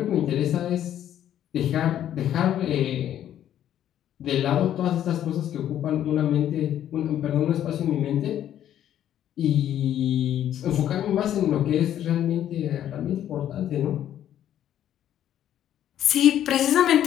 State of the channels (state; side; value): quieter; right; 11.0 dB